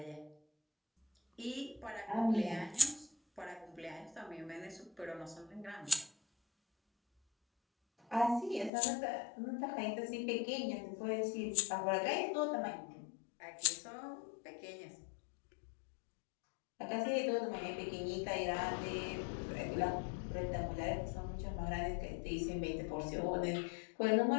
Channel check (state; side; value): drops out; right; at 8.7 s